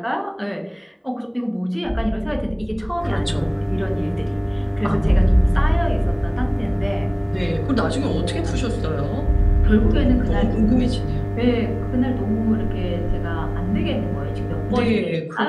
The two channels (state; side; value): identical; both; correlation 1.00